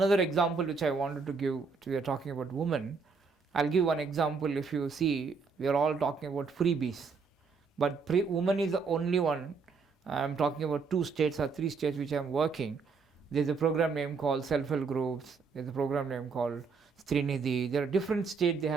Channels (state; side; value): quieter; left; 4.9 dB